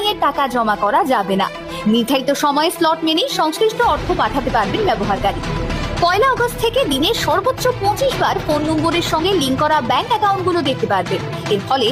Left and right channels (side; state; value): both; identical; correlation 1.00